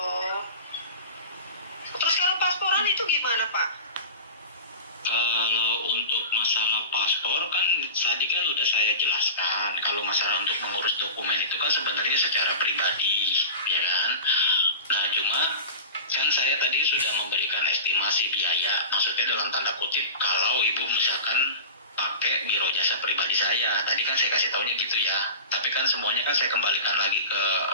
Terus kalau pasporan itu gimana Pak? Kalau untuk masalah paspor kan tadi kan udah saya jelaskan. Kalau masalah untuk mengurus dokumen itu kan sebenarnya secara pribadi, ya kan? Nah cuma kan saya tadi sudah memberikan estimasi biaya, maksudnya dalam tanda kutip kalau ibu misalkan pakai biro jasa pribadi saya, tadi kan saya kasih taunya gitu ya. Tapi tapi kan semuanya kan saya kembalikan lagi ke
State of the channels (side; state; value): both; inverted; correlation -0.31